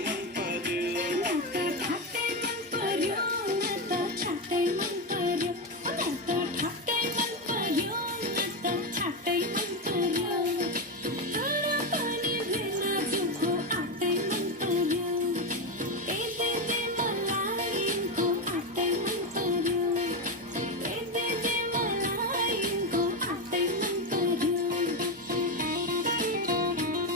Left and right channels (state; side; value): normal; both; correlation 0.11